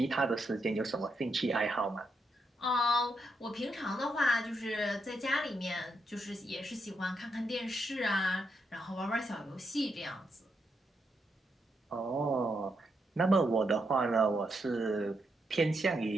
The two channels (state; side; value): normal; both; correlation 0.81